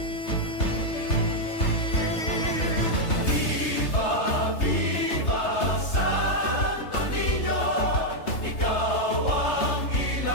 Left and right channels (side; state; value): right; late; 3.3 ms